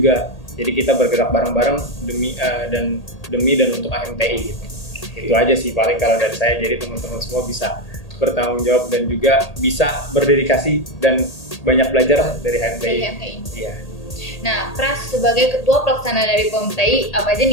Jadi kita bergerak bareng-bareng demi dan untuk HMTI gitu. Itu aja sih paling kalau dari saya. Jadi teman-teman semua bisa bertanggung jawab dan juga bisa berdedikasi dan banyak belajar dari HMTI. Iya. Nah, Pras sebagai ketua pelaksana dari POMTI, apa aja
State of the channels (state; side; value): late; right; 1.8 ms